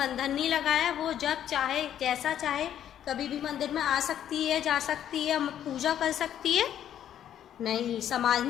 नहीं लगाया। वो जब चाहे, जैसा चाहे, कभी भी मंदिर में आ सकती है, जा सकती है, पूजा कर सकती है। नहीं, समाज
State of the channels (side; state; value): right; quieter; 10.4 dB